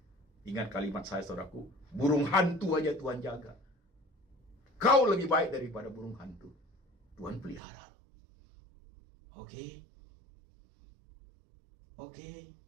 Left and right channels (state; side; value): drops out; left; at 7.6 s